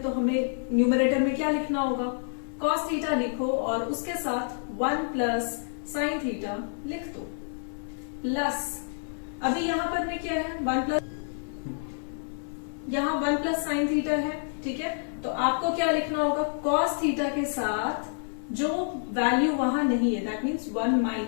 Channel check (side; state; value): right; silent; 59 dB below the other